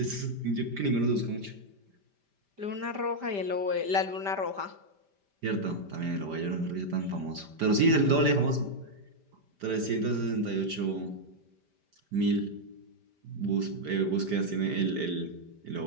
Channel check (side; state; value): left; late; 5.1 ms